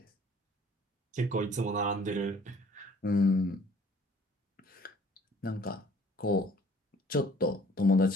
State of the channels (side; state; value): both; normal; correlation 0.55